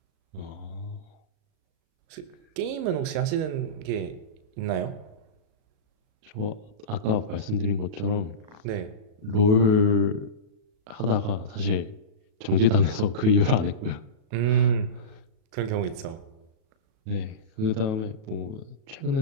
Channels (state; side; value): late; left; 37 ms